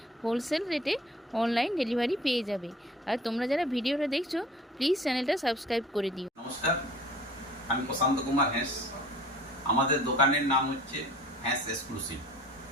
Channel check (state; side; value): normal; both; correlation 0.47